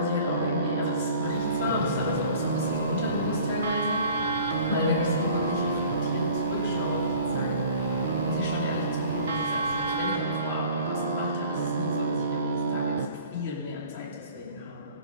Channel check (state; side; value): inverted; both; correlation -0.49